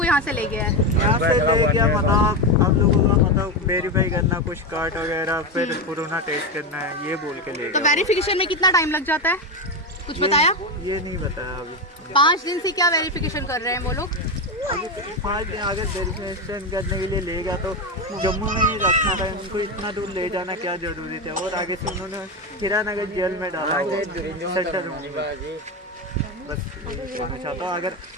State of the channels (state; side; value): normal; both; correlation 0.14